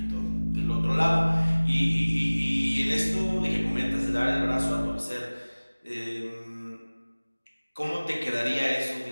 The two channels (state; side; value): inverted; both; correlation -1.00